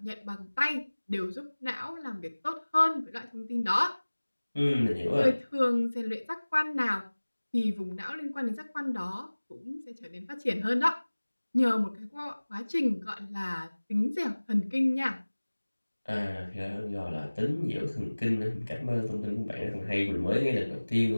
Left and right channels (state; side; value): inverted; both; correlation -1.00